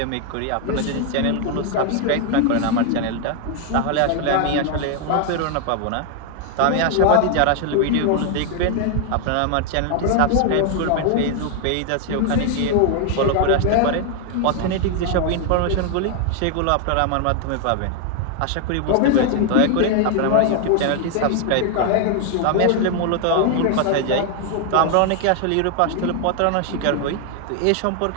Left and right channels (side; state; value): both; different; correlation 0.00